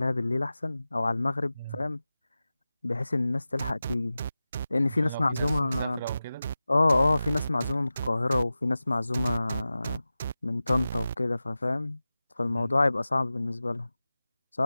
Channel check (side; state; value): both; inverted; correlation -0.95